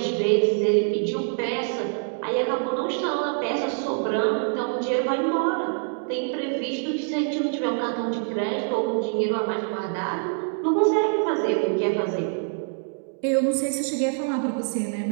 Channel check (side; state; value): left; silent; 57 dB below the other